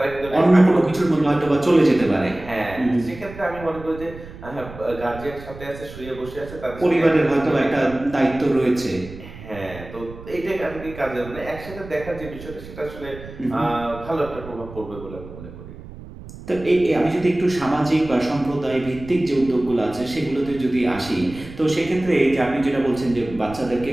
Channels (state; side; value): noise; right; rumble, 15 dB below the sound